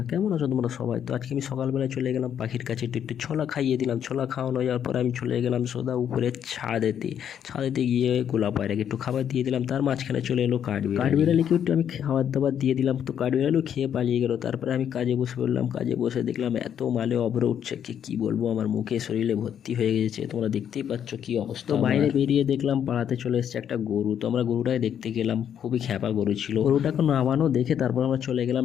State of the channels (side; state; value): right; quieter; 9.1 dB